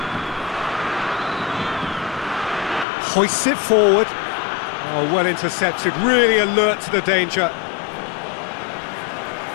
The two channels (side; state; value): right; drops out; at 2.9 s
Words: Hoists it forward. Oh, well intercepted, really alert to the danger.